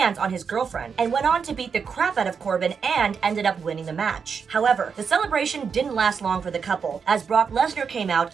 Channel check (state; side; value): quieter; left; 6.1 dB